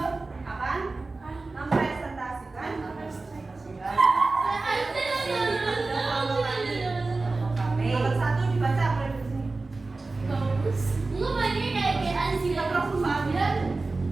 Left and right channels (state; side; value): quieter; left; 3.5 dB